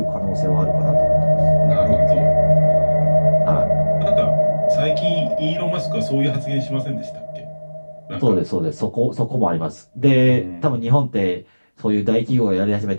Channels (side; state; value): both; inverted; correlation -1.00